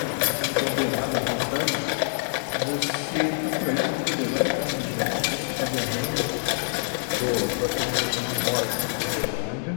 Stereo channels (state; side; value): silent; right; digital silence